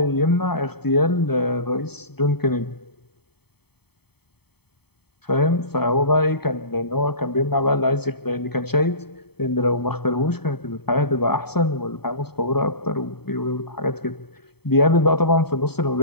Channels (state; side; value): late; right; 0.97 ms